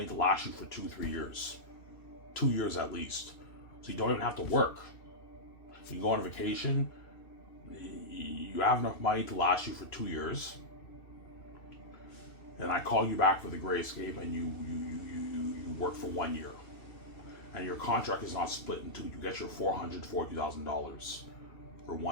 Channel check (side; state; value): right; late; 2.7 ms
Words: to last you for 2-3 years. 2 years at least. So you don't even have to work. You go on vacation, you have enough money to last you for 2 years. And I call you back for the Gray Escape, and you work for 1 year. And your contract is not split in two. You get your $440,000 for